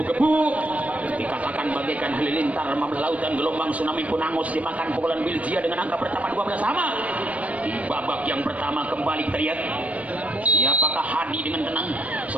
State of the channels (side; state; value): left; late; 0.067 ms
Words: dikatakan bagaikan halilintar membelah lautan, gelombang tsunami pun angus dimakan pukulan Biljia dengan angka pertama 12-sama. Di babak yang pertama kembali kita lihat siapakah Hadi dengan tenang.